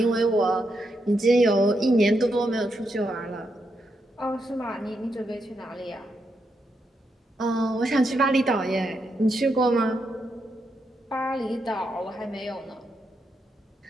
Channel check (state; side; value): normal; both; correlation 0.82